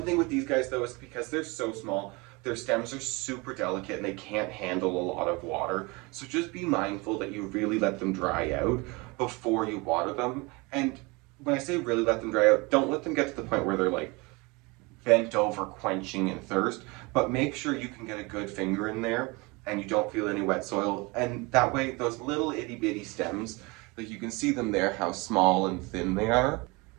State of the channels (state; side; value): quieter; left; 25.9 dB